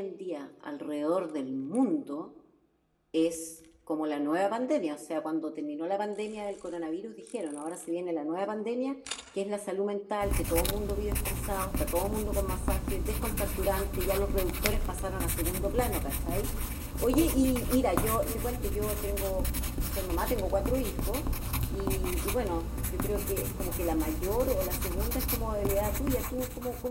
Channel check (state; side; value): identical; both; correlation 1.00